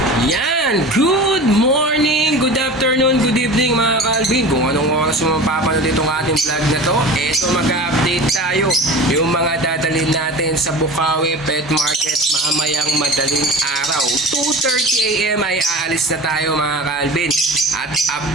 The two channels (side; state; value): both; normal; correlation 0.35